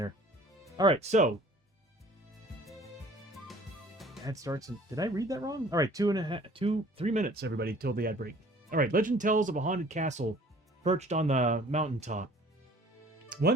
All right, so ad starts in, did I read that wrong? All right, 3 minutes, everybody, till the ad break. All right, legend tells of a haunted castle perched on the mountaintop.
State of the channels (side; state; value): both; normal; correlation 0.51